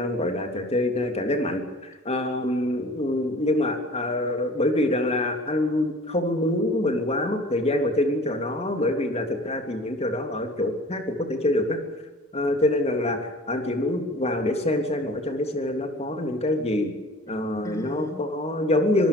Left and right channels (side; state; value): both; normal; correlation 0.45